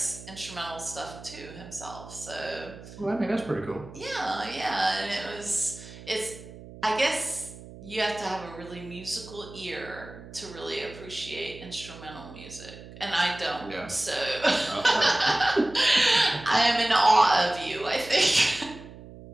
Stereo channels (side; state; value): right; noise; hum, 16 dB below the sound